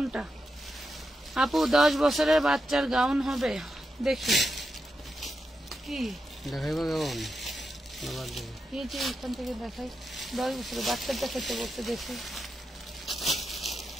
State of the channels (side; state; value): both; normal; correlation 0.87